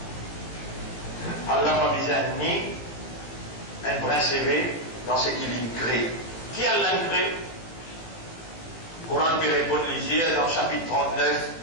Allah n'a pas besoin ni un brin CV dans ce qu'il crée. Qui Allah crée? Coran peut répondre lisier dans chapitre 39,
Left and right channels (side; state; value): right; late; 18 ms